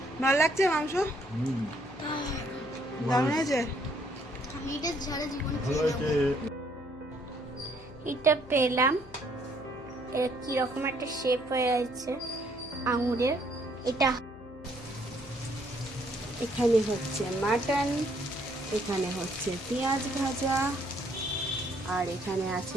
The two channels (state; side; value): noise; left; hum, 19 dB below the sound